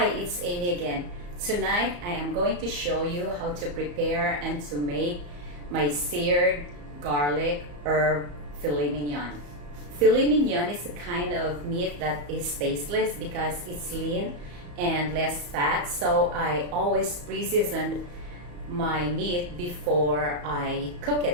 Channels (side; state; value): left; late; 34 ms